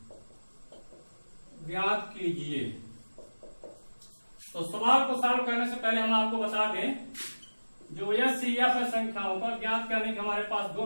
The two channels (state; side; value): inverted; both; correlation -1.00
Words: कीजिए। तो सवाल को सॉल्व करने से पहले हम आपको बता दें, जो एचसीएफ संख्याओं का ज्ञात करने की हमारे पास